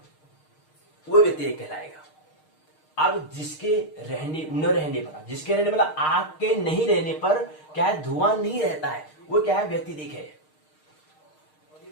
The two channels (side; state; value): right; late; 6.5 ms